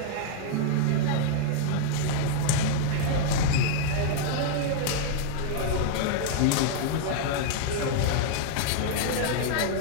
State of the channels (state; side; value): different; both; correlation -0.01